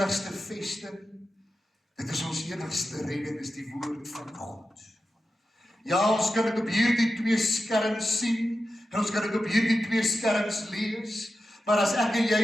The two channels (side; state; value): both; normal; correlation 0.91